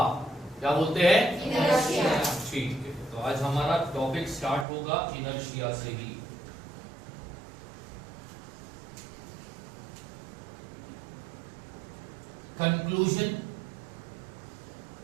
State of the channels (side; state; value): left; drops out; at 4.7 s